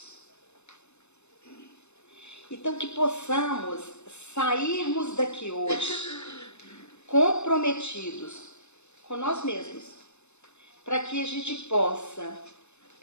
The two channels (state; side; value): late; right; 0.81 ms